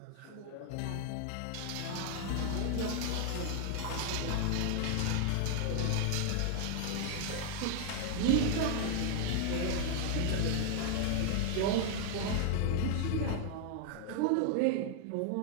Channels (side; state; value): both; different; correlation 0.00